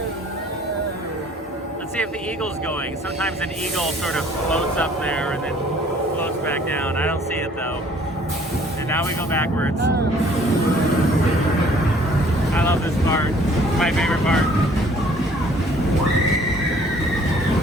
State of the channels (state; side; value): normal; both; correlation 0.57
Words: Let's see if the eagle's going. Sometimes an eagle sort of floats up there and then floats back down. I don't see it though. And now we go backwards. I love this part. It's my favorite part.